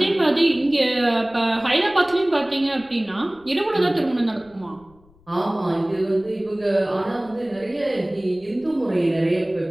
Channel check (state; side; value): noise; left; rumble, 29 dB below the sound